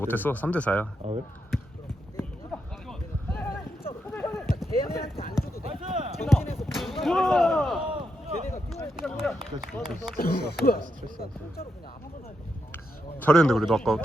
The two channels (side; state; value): both; normal; correlation 0.83